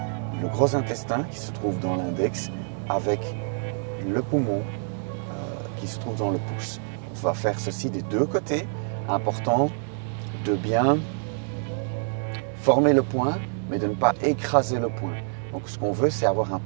le gros intestin qui se trouve dans l'index avec le poumon qui se trouve dans le pouce. On va faire ceci des deux côtés. Important de bien former le point, mais de ne pas écraser le point. Donc ce qu'on veut, c'est avoir un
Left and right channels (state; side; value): silent; left; digital silence